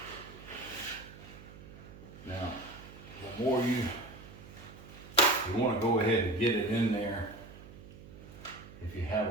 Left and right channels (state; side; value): noise; right; hum, 17 dB below the sound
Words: Now, the more you want to go ahead and get it in there. If you